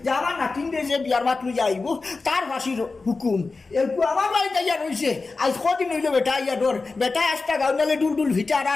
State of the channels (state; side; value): quieter; right; 3.9 dB